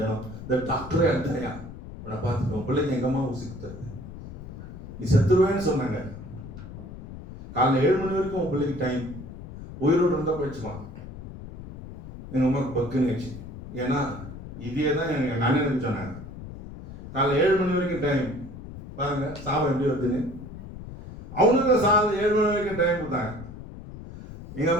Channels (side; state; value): left; noise; rumble, 13 dB below the sound